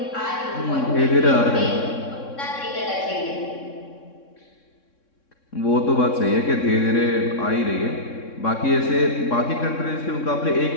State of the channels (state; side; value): late; right; 3.6 ms